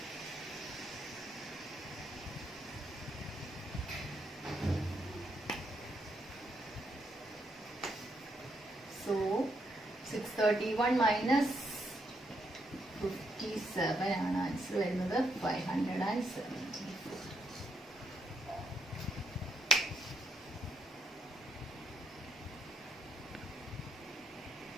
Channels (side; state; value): both; normal; correlation 0.76